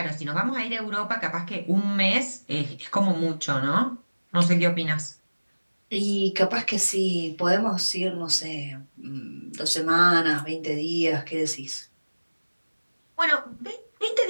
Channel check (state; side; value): inverted; both; correlation -1.00